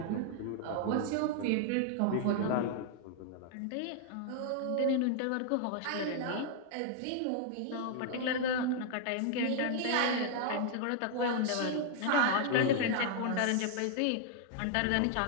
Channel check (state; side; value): different; both; correlation 0.00